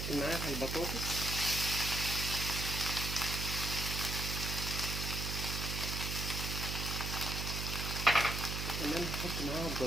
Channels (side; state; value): right; noise; hum, 3 dB below the sound